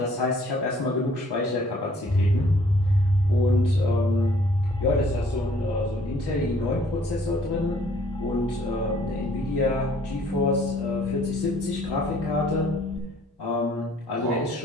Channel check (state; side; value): normal; both; correlation 0.59